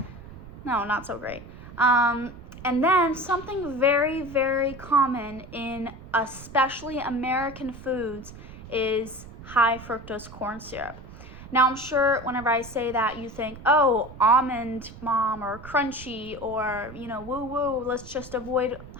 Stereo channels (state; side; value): noise; right; rumble, 16 dB below the sound